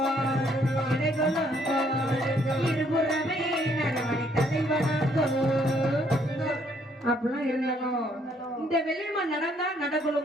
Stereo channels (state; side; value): normal; both; correlation 0.67